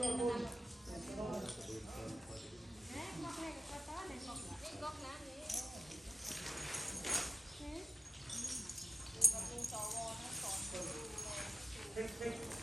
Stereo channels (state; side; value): normal; both; correlation 0.83